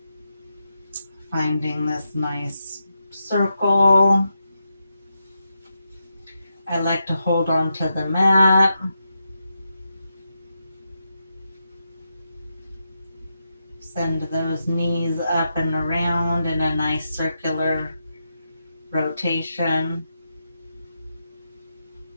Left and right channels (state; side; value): inverted; both; correlation -0.86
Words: Finding this nice circle. I like to hold on to the mat. Send those knees up and around in a nice circular rotation.